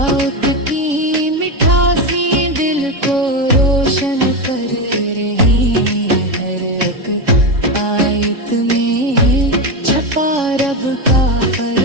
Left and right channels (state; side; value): late; left; 3.5 ms